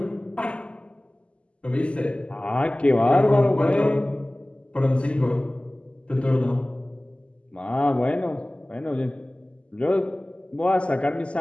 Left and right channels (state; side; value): late; right; 0.055 ms